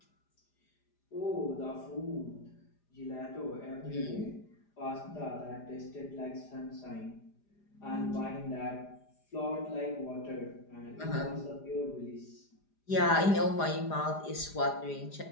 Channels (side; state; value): right; late; 4.9 ms